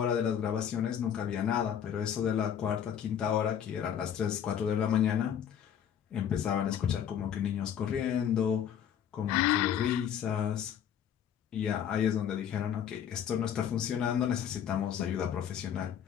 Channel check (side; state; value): right; quieter; 9.0 dB